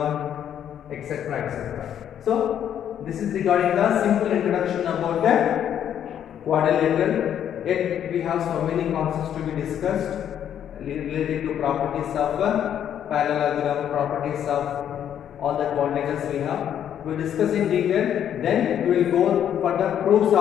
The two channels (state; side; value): quieter; right; 9.7 dB